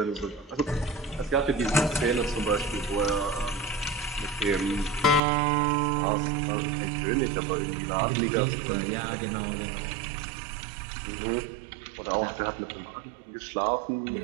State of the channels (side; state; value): left; drops out; at 5.2 s